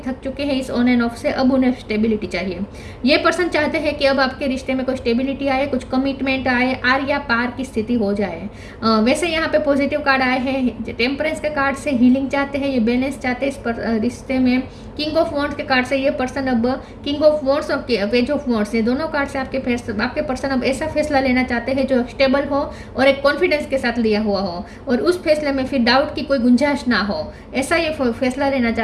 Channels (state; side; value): identical; both; correlation 1.00